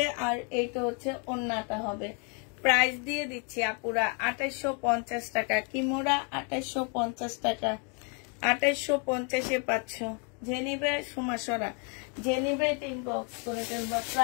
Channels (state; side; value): quieter; right; 37.4 dB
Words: আর এইটা হচ্ছে ওড়নাটা হবে। প্রাইস দিয়ে দিচ্ছি আপুরা 2850 টাকা। কিমোরা 2850 টাকা। 2850-এ পাচ্ছ। যে নিবে সুমাসরা, যে নিবে ইনবক্স করে ফেলবা।